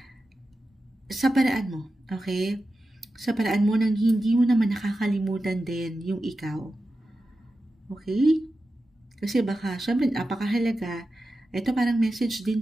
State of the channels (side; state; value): both; normal; correlation 0.92